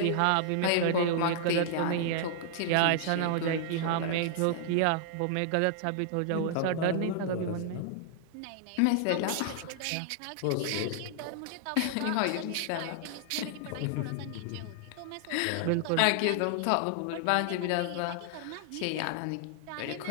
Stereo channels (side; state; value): both; different; correlation 0.00